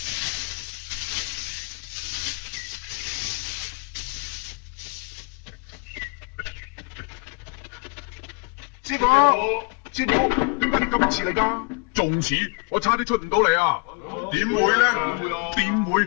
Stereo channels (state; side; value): quieter; right; 33.6 dB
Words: 師傅，師傅，點解你咁遲嚟㗎？仲遲，我差啲出唔到嚟啊！點會咧？點會？